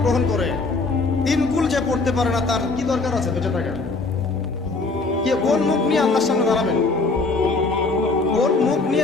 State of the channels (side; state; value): right; quieter; 3.7 dB